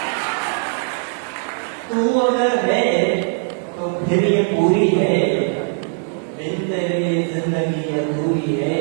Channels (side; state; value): left; silent; 57 dB below the other